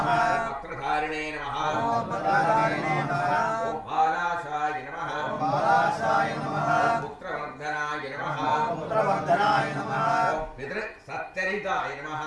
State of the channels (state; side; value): identical; both; correlation 1.00